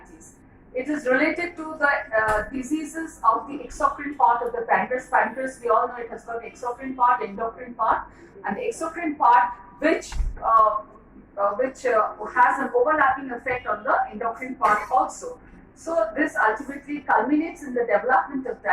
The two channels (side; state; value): both; identical; correlation 1.00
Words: It is related to the diseases of the exocrine part of the pancreas. Pancreas, we all know it has got the exocrine part, endocrine part, and the exocrine part which has an overlapping effect on the endocrine part also. So this ultimately culminates in the development of